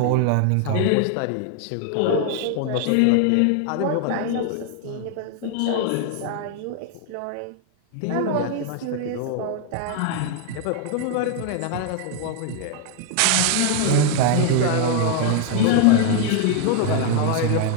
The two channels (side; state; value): both; different; correlation 0.00